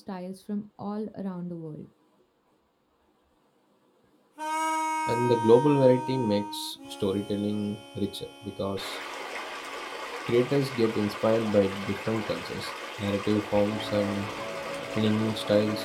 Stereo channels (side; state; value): both; identical; correlation 1.00